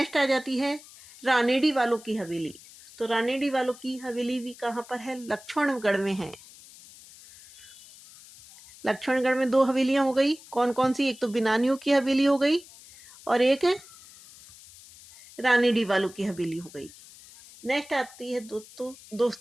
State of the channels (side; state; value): left; noise; hiss, 21 dB below the sound